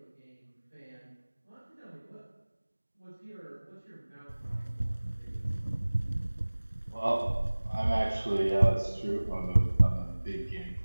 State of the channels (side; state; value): both; inverted; correlation -1.00